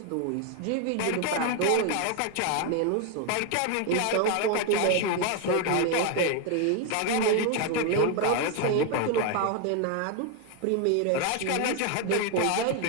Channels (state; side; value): different; both; correlation 0.01